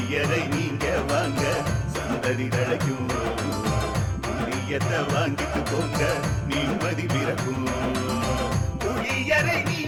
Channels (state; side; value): identical; both; correlation 1.00